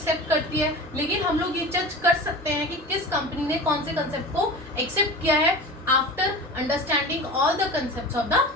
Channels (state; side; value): normal; both; correlation 0.33